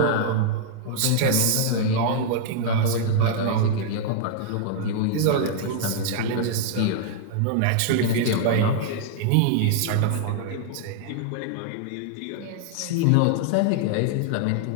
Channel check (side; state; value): both; different; correlation 0.00